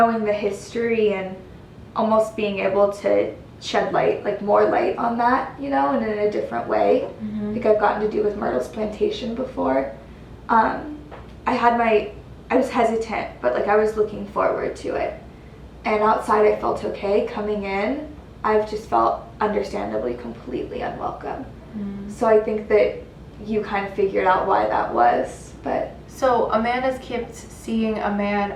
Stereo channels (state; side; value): identical; both; correlation 1.00